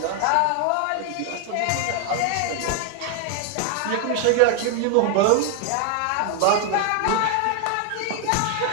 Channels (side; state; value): both; different; correlation 0.00